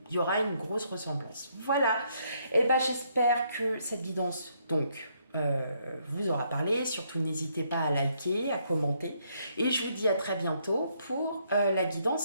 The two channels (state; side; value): inverted; both; correlation -0.72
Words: il y aura une grosse ressemblance. Voilà. Et bah j'espère que cette guidance donc vous aura parlé. Surtout n'hésitez pas à liker, à commenter. Et je vous dis à très bientôt pour la